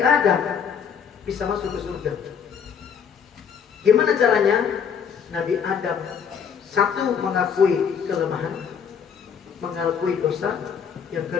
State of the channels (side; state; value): right; quieter; 7.2 dB